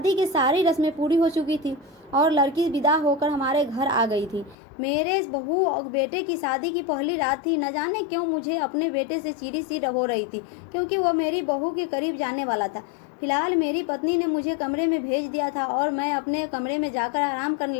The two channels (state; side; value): drops out; right; at 4.5 s